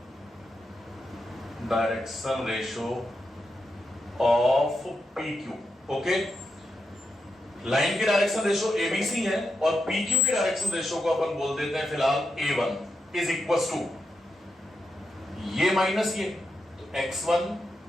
ratio of PQ। Okay, line की डायरेक्शन रेशो ABC है और PQ की डायरेक्शन रेशो को अपन बोल देते हैं फिलहाल A1 इज इक्वल टू ये माइनस ये, तो X1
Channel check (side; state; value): both; normal; correlation 0.86